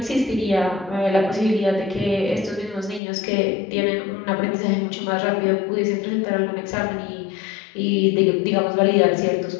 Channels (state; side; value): drops out; right; at 3.0 s